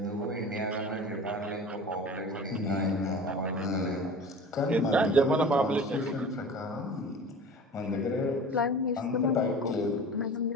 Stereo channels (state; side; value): normal; both; correlation 0.38